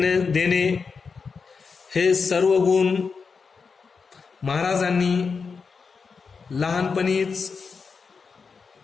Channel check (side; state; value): right; quieter; 5.2 dB